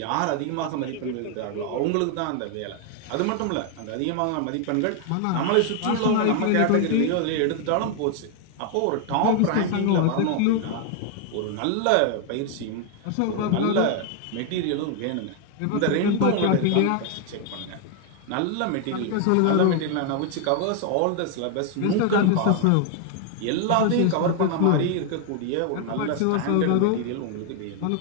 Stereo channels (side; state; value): both; different; correlation 0.00